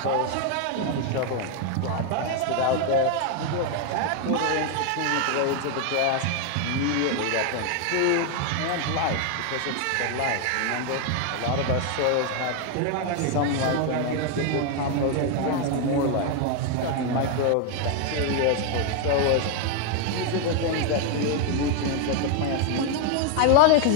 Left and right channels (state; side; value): different; both; correlation 0.01